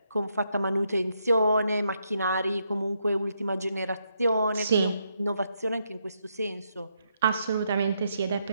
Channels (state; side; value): inverted; both; correlation -0.78